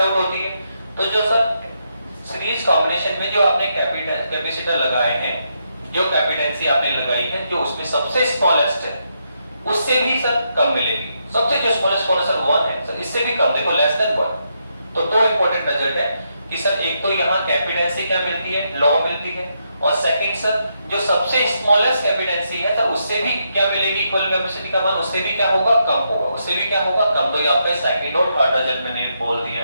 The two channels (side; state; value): both; inverted; correlation -0.80